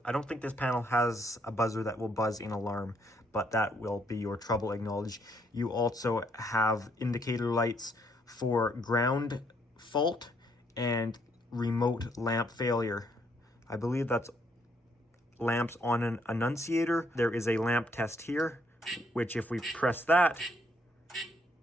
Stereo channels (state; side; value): normal; both; correlation 0.71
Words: I don't think this panel has a buzzer that will buzz in alarm, but that will be your trouble acknowledge. You also have indicator lights for ground fault and remote lamp failure. I believe that's lamps on an annunciator. There is a lamp test here, which if we press that